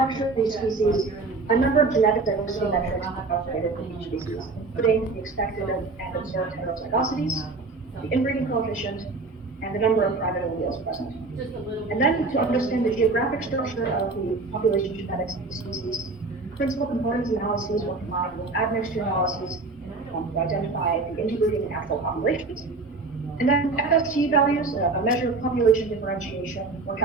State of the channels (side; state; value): left; quieter; 3.7 dB